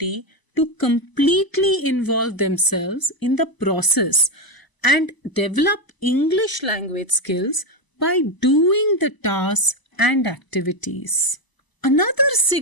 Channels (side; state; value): right; late; 1.0 ms